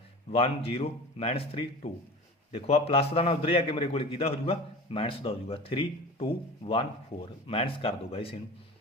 1 0 -3 2 ਦੇਖੋ ਆ ਪਲੱਸ ਦਾ ਨਾ ਉਧਰ ਹੀ ਆ ਕੇ ਮੇਰੇ ਕੋਲੇ ਕਿਹਦਾ ਹੋ ਜਾਊਗਾ ਮਾਈਨਸ ਦਾ ਹੋ ਜਾਊਗਾ 3 2 1 4 ਮਾਈਨਸ ਕਰ ਦੋ ਗਾਇਸ ਇਹਨੂੰ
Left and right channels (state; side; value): normal; both; correlation 0.35